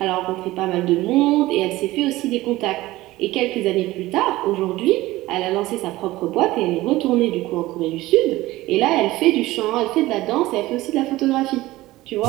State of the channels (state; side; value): quieter; left; 17.8 dB